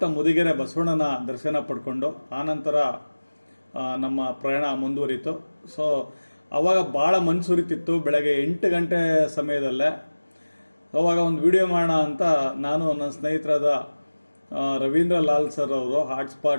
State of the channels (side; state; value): both; inverted; correlation -1.00